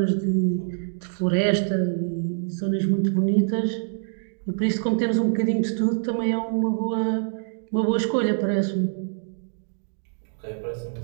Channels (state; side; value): silent; left; digital silence